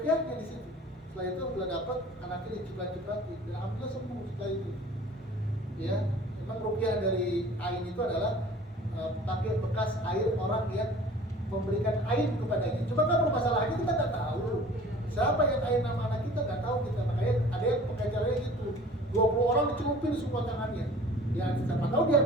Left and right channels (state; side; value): normal; both; correlation 0.47